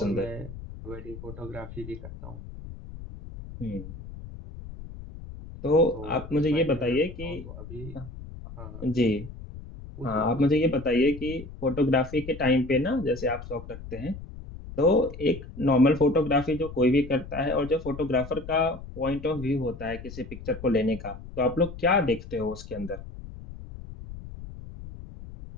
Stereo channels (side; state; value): left; noise; rumble, 13 dB below the sound